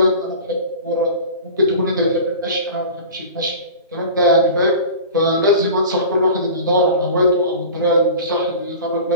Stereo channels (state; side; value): inverted; both; correlation -0.37